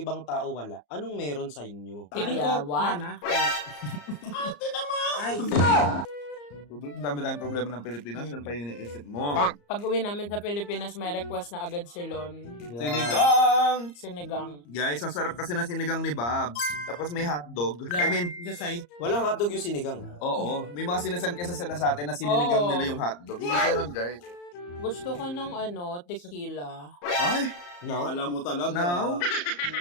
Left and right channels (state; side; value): late; right; 34 ms